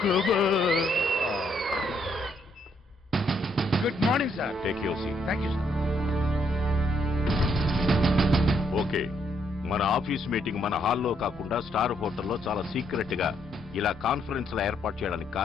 Good morning sir. Take your seat. Thank you sir. Okay, మన ఆఫీస్ మీటింగ్ మన హాల్లో కాకుండా స్టార్ హోటల్లో చాలా సీక్రెట్ గా ఇలా కాన్ఫరెన్స్ లా ఏర్పాటు చేయడానికి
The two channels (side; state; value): both; normal; correlation 0.73